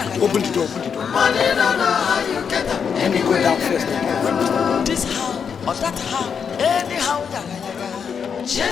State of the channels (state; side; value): quieter; right; 6.8 dB